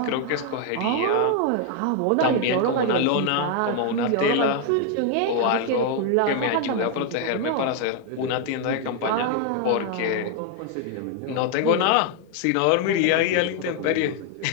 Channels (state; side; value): different; both; correlation 0.00